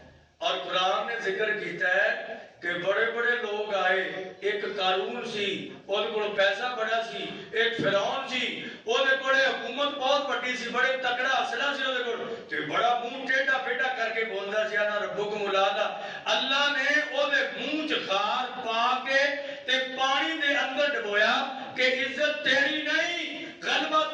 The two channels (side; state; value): both; identical; correlation 1.00